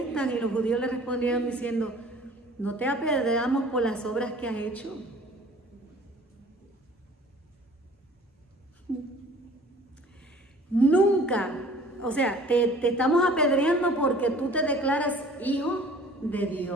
y los judíos le respondieron diciendo, no te apedreamos por las obras que has hecho. Nunca, o sea, te estamos apedreando porque tú te declaras hijo de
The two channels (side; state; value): both; normal; correlation 0.50